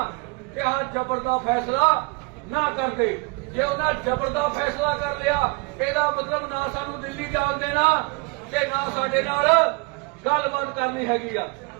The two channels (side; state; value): left; quieter; 28.9 dB